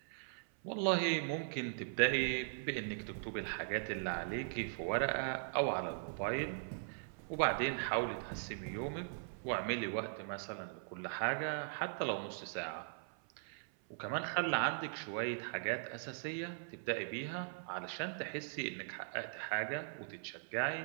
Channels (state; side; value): silent; left; 51 dB below the other